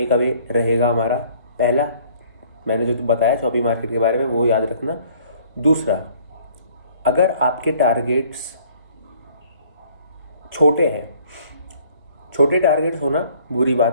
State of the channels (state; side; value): late; left; 1.3 ms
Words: अवे रहेगा हमारा? पहला, मैंने जो बताया शॉपिंग मार्केट के बारे में वो याद रखना। दूसरा, अगर आपके टारगेट्स छोटे हैं, छोटे टारगेट्स होना बुरी